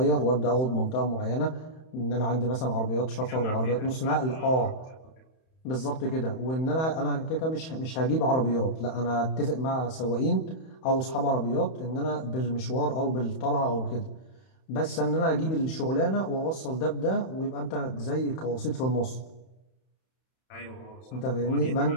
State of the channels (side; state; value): right; late; 31 ms